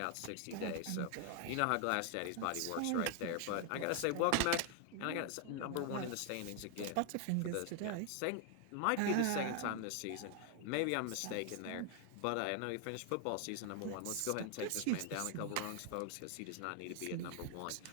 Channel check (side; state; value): both; different; correlation 0.00